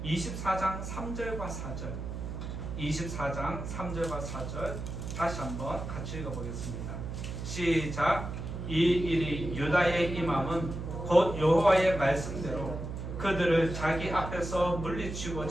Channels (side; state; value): right; noise; hum, 6 dB below the sound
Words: 24장 3절과 4절 24장 3절과 4절 다시 한번 같이 읽어보겠습니다. 시작. 이 일이 유다의 임함은 곧 여호와의 말씀대로 그들을 자기 앞에서